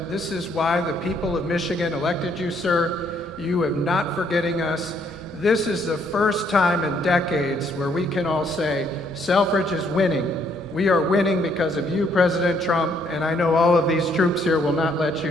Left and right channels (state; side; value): normal; both; correlation 0.68